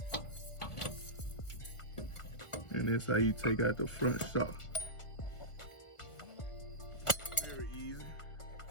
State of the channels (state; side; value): late; right; 1.5 ms